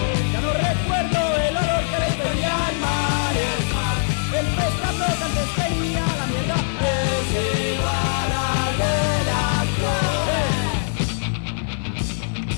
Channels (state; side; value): silent; right; digital silence